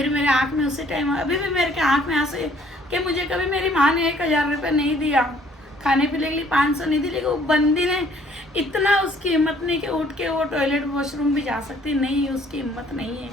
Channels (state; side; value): normal; both; correlation 0.60